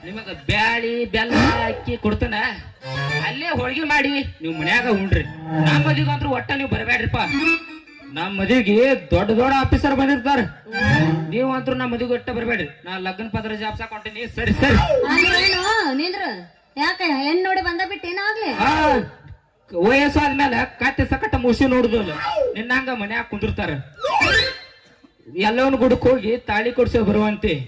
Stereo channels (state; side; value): identical; both; correlation 1.00